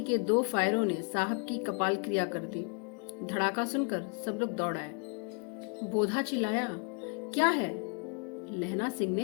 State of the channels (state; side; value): quieter; right; 38.7 dB